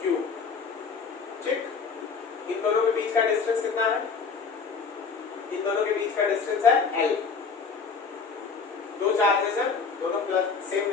Q, ठीक। इन दोनों के बीच का डिस्टेंस कितना है? इन दोनों के बीच का डिस्टेंस है L। दो चार्जेस हैं, दोनों प्लस सेम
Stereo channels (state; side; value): quieter; right; 5.2 dB